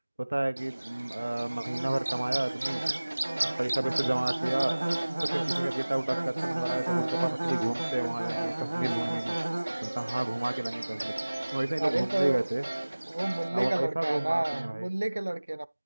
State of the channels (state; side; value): inverted; both; correlation -1.00